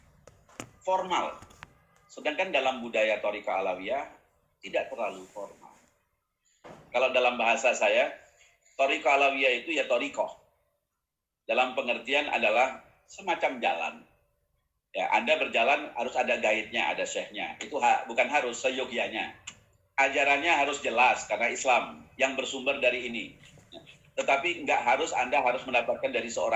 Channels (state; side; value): identical; both; correlation 1.00